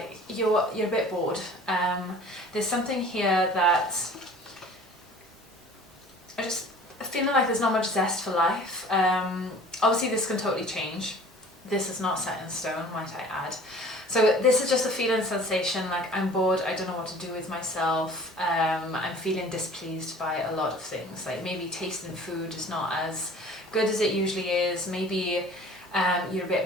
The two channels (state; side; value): normal; both; correlation 0.47